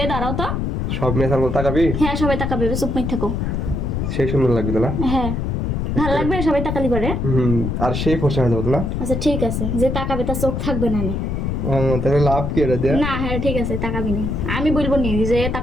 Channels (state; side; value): noise; left; rumble, 1 dB below the sound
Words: দাঁড়াও তো। সব মেয়ে সামনে তাকাবি? হ্যাঁ, সবাই তাকাবে, চুপ মেয়ে থাকো। সেই সুন্দর লাগবে তাহলে। হ্যাঁ, ভালো লাগবে, সবাই তাকালি পারে। আর সেই ফসা হয়ে যাবে তাহলে। আচ্ছা ঠিক আছে, যে তাকাবে তার চোখ থাকবে না। তাহলে লাভ কি এটা দিয়ে? না, হ্যাঁ ঠিক আছে, তাকাবি নি, আমি বলবো নি যে